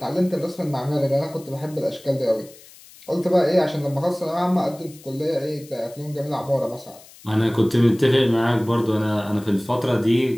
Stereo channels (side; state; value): left; noise; hiss, 22 dB below the sound